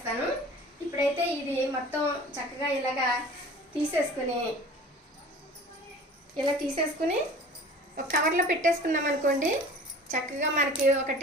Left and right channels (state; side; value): normal; both; correlation 0.43